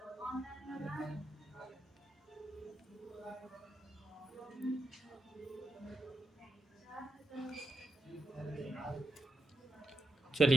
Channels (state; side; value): normal; both; correlation 0.86